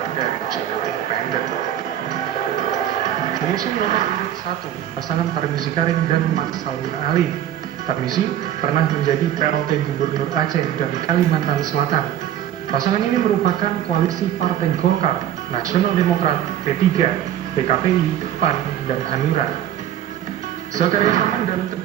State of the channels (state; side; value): quieter; left; 11.1 dB